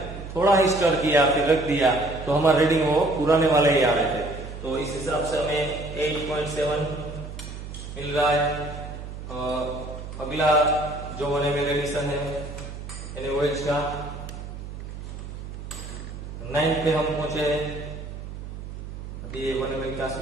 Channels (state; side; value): noise; right; hum, 10 dB below the sound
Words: थोड़ा ही स्टर किया फिर रख दिया तो हमारा रीडिंग वो पुराने वाले ही आ रहे थे। तो इस हिसाब से हमें 8.7 मिल रहा है। अगला जो 1 ml एडिशन है NaOH का 9 पे हम पहुंचे हैं। अभी 1 ml का